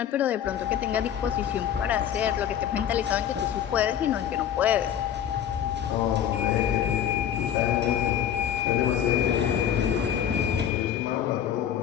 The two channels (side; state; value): right; quieter; 9.7 dB